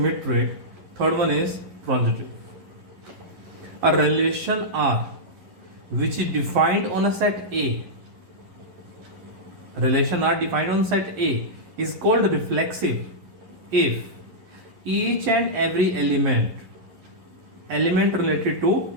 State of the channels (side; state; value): left; late; 11 ms